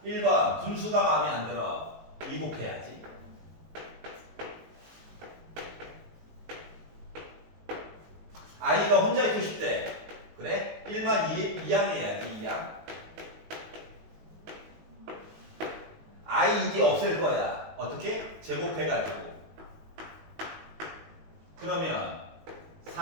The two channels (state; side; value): late; left; 19 ms